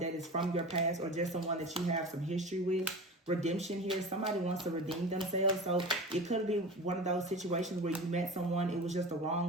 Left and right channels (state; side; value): normal; both; correlation 0.32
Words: is from your past or just someone that you have some history with. Redemption here. Somebody wants to redeem themselves. So it could be one of those situations where you met someone, it was just the